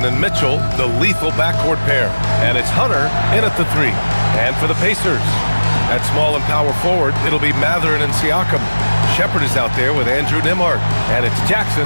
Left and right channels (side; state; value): both; inverted; correlation -1.00